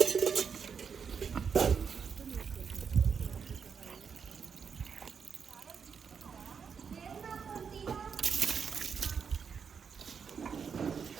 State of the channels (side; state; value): left; quieter; 6.5 dB